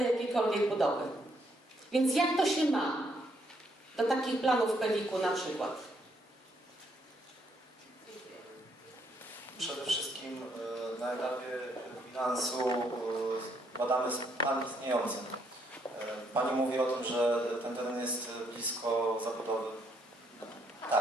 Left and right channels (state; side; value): normal; both; correlation 0.72